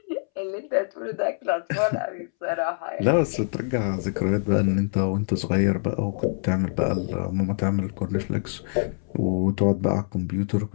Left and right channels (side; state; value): right; silent; 62 dB below the other